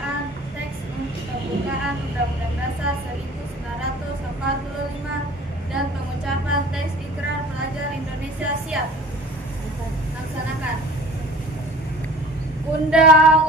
teks pembukaan Undang-Undang Dasar 1945 dan pengucapan teks Ikrar Pelajar Indonesia. Siap. Laksanakan.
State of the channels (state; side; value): normal; both; correlation 0.45